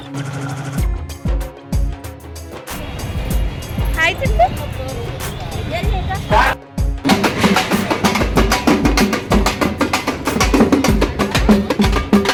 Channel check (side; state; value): both; identical; correlation 1.00